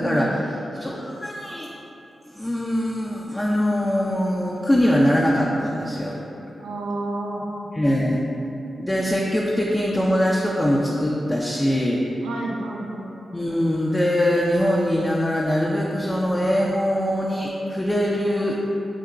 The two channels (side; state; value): both; normal; correlation 0.93